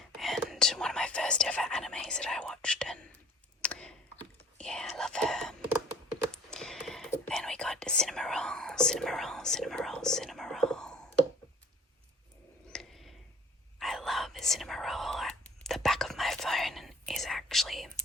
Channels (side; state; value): both; normal; correlation 0.51